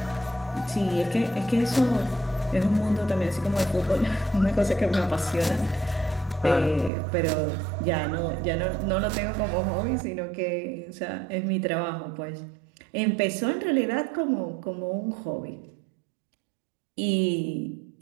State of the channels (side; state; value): left; drops out; at 6.9 s